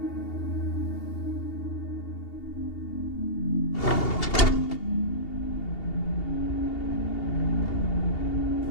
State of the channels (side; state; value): right; late; 2.8 ms